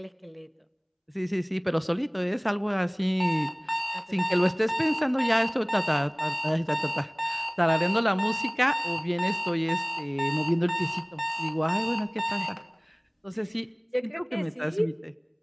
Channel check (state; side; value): identical; both; correlation 1.00